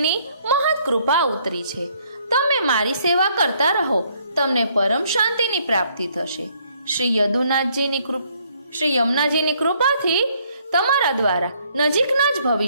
મહৎ કૃપા ઉતરી છે. તમે મારી સેવા કરતા રહો, તમને પરમ શાંતિની પ્રાપ્તિ થશે. શ્રી યમુનાજીની કૃપાથી તમારા દ્વારા નજીકના જ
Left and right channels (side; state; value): both; inverted; correlation -0.67